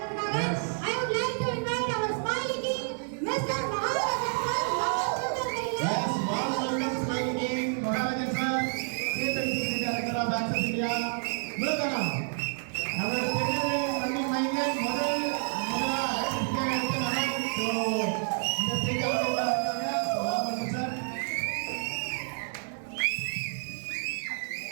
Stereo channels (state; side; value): silent; left; 58 dB below the other